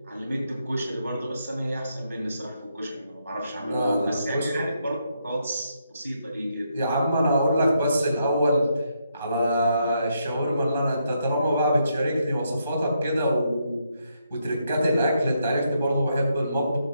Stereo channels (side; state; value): both; inverted; correlation -0.78